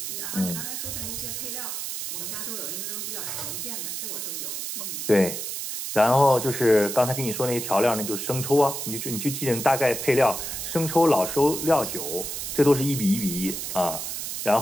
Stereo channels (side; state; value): right; noise; hiss, 5 dB below the sound